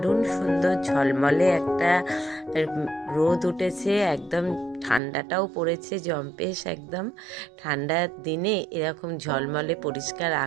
সুন্দর ঝলমলে একটা রোদ উঠেছে, একদম ঠান্ডাটাও পড়েছে জম্পেশ। একদম ঠান্ডার দিনে এরকম ঝলমলে পরিষ্কার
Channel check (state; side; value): drops out; left; at 5.0 s